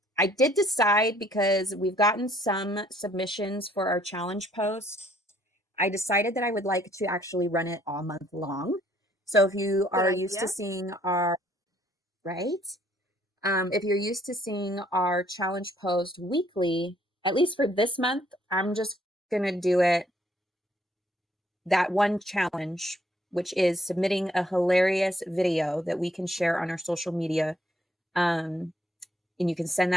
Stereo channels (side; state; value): both; normal; correlation 0.65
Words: I did decide, because we've gotten some submissions for our challenge post, I decided that I would like to actually run it all month long. So if you are used to seeing our, if you're used to seeing our challenge post weekly, at least for this month, I'm just going to do it that one challenge, which is submitting a hilarious video that we can share on our social media. And you can send